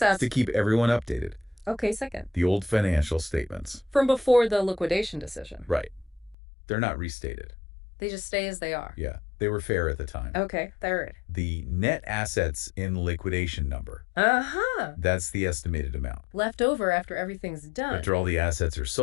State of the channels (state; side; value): drops out; right; at 6.4 s